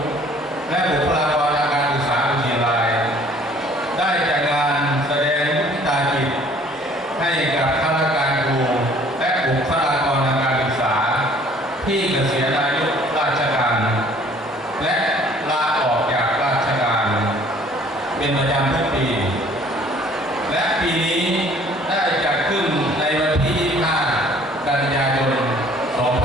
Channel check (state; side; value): normal; both; correlation 0.55